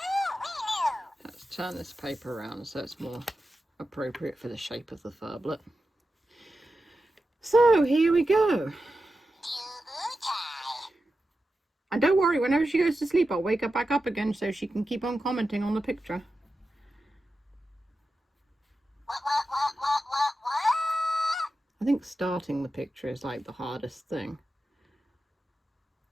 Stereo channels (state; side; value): normal; both; correlation 0.91